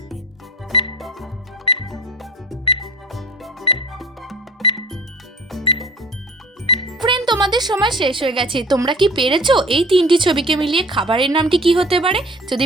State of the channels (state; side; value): normal; both; correlation 0.42